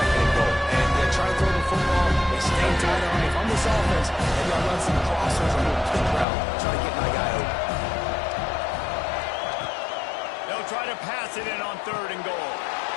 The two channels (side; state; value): right; drops out; at 6.2 s